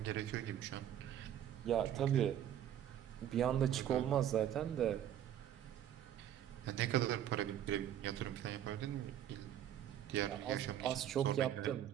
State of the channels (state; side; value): quieter; left; 10.6 dB